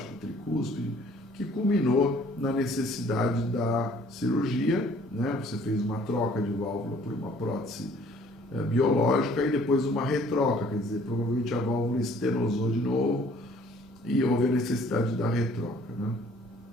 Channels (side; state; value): both; normal; correlation 0.57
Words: tricúspide, que culminou na necessidade da cirurgia, né? Você fez uma troca de válvula por uma prótese biológica e depois uma retroca, quer dizer, provavelmente a válvula estenosou de novo e houve a necessidade da retroca, né?